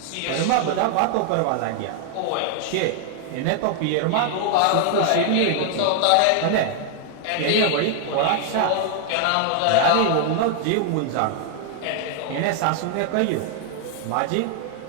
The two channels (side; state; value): both; different; correlation 0.00